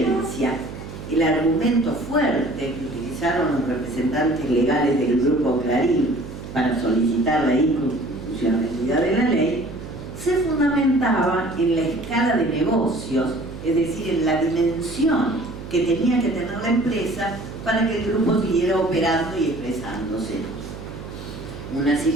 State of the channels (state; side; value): noise; right; hum, 11 dB below the sound